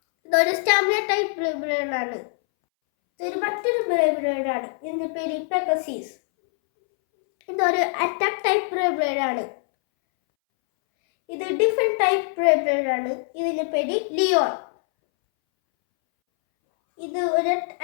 ഇതൊരു സ്റ്റാമിന ടൈപ്പ് ബ്രേബേറാണ്. ഇതൊരു മറ്റൊരു ബ്രേബേറാണ്. ഇതിൻ്റെ പേര് പെഗസീസ്. ഇതൊരു അറ്റാക്ക് ടൈപ്പ് ബ്രേബേറാണ്. ഇത് ഡിഫറെന്റ് ടൈപ്പ് ബ്രേബേറാണ്. ഇതിന്റെ പേര് ലിയോൺ. ഇത് ഒരു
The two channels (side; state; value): right; silent; 63 dB below the other